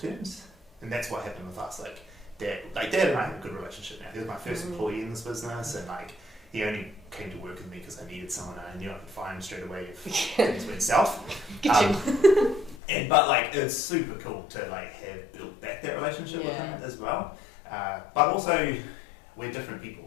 And that's what happened with us. Like dad and I have a good relationship now. He was my first employee in this business, and like he only came to work with me because I needed someone and I knew I could find him straight away if things went south. But like it's super cool to like have built back that relationship with him as well. But also we're different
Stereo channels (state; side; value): drops out; right; at 12.8 s